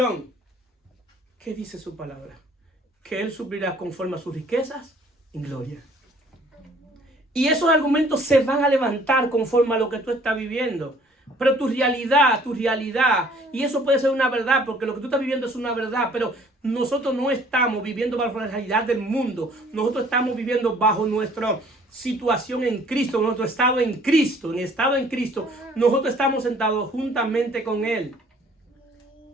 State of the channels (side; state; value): both; normal; correlation 0.56